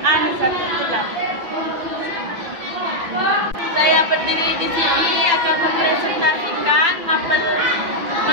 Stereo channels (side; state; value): left; late; 5.9 ms